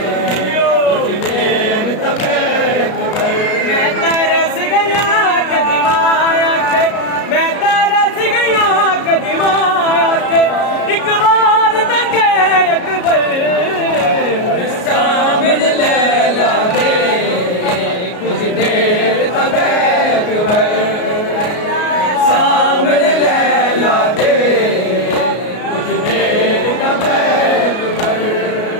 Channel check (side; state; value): right; late; 33 ms